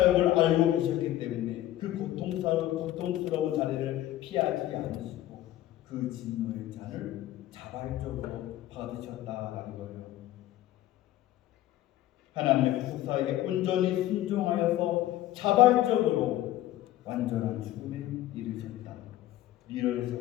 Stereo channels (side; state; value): right; quieter; 14.3 dB